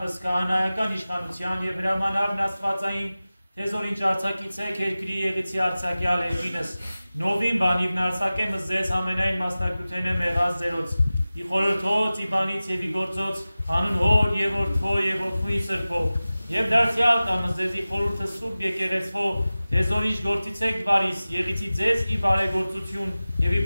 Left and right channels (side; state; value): both; inverted; correlation -0.97